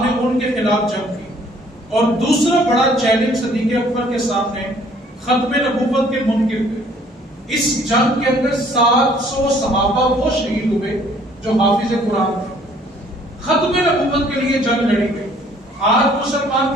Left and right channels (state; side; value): normal; both; correlation 0.59